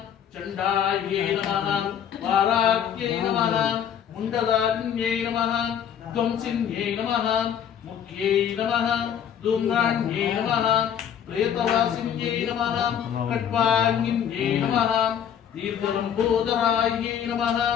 चण्डायै नमः वाराक्यै नमः मुण्डदारिण्यै नमः ध्वंसिन्यै नमः मुख्यै नमः धूम्राण्यै नमः प्रेतवासिन्यै नमः कट्वाङ्गिन्यै नमः दीर्घलम्बोदरायै नमः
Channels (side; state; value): right; quieter; 8.9 dB